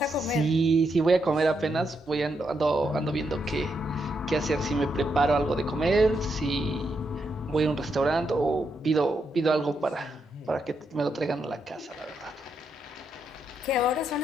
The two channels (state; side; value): normal; both; correlation 0.81